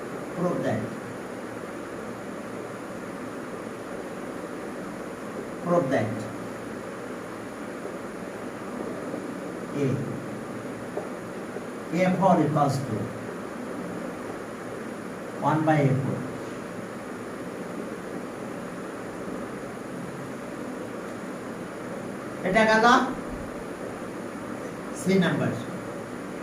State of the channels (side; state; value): both; identical; correlation 1.00